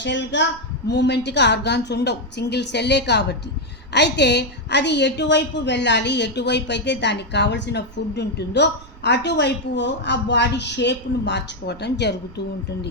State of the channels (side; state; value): right; noise; rumble, 19 dB below the sound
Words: మూమెంట్గా ఆర్గాన్స్ ఉండవు, సింగిల్ సెల్లే కాబట్టి. అయితే అది ఎటువైపు వెళ్ళాలి, ఎటువైపు అయితే దానికి కావలసిన ఫుడ్ ఉంటుందో అటువైపు ఆ బాడీ షేప్ను మార్చుకోవటం జరుగుతూ